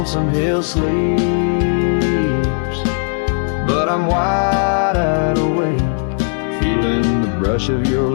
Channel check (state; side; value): silent; right; 68 dB below the other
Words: Hill sleeps, but I'm wide awake, feeling the brush of your